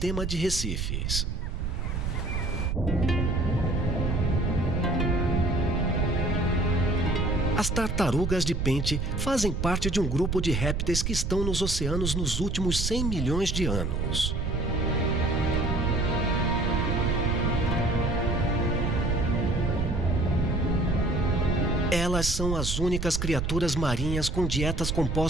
de recifes. As tartarugas de pente fazem parte de um grupo de répteis que estão nos oceanos nos últimos 100 milhões de anos. Elas são as únicas criaturas marinhas com dietas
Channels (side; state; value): right; noise; rumble, 1 dB below the sound